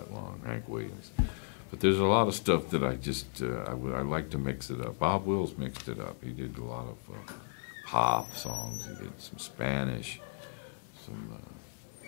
long, Hank Williams. But there's a lot of stuff that I just, I like to mix it up. Bob Wills mixed it up. He did a lot of pop songs. He did some Spanish, some,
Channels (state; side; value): silent; right; 55 dB below the other